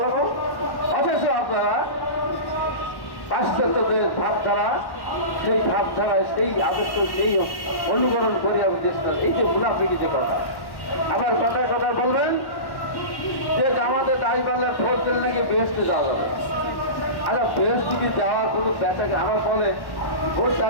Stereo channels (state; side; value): late; right; 1.1 ms